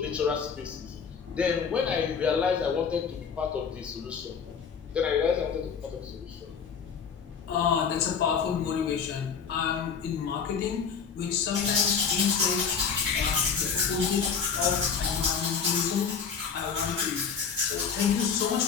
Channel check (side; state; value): right; quieter; 6.5 dB